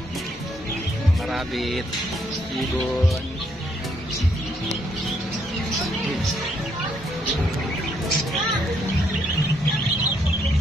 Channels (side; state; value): both; normal; correlation 0.72